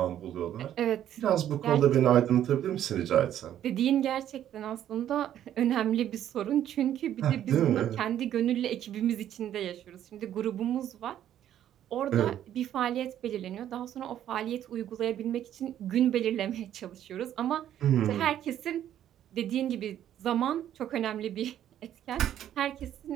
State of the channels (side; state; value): left; quieter; 11.1 dB